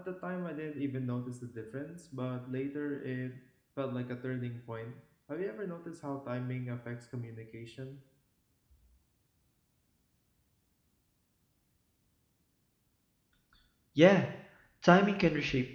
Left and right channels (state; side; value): identical; both; correlation 1.00